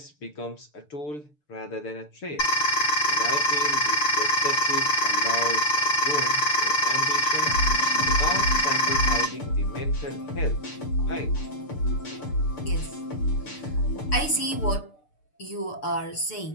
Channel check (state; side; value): late; right; 6.7 ms